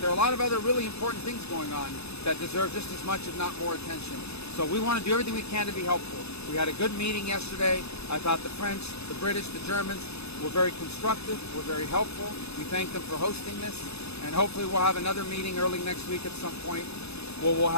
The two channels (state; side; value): late; right; 0.79 ms